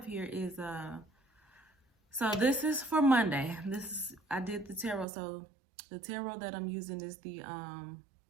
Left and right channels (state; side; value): drops out; left; at 5.1 s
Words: here is so this is for Monday. I did the tarot. So the tarot that I'm using is the